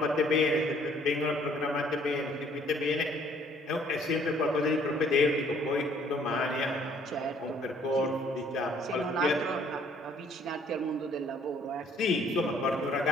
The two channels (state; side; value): normal; both; correlation 0.61